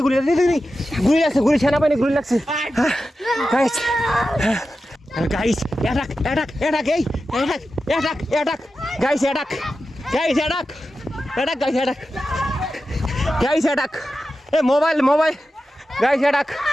গুলি সেনাবাহিনী গুলি লাগছে গাইস অ্যাটাক এ মোবাইল গাইস অ্যাটাক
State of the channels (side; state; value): both; normal; correlation 0.92